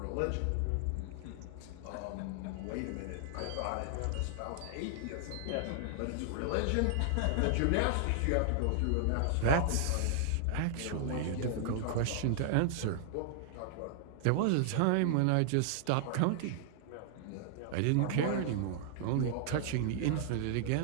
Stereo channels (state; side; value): different; both; correlation -0.01